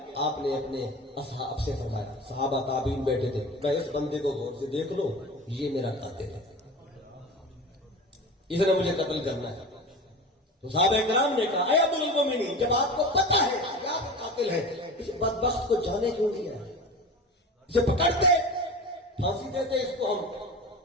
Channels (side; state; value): both; normal; correlation 0.32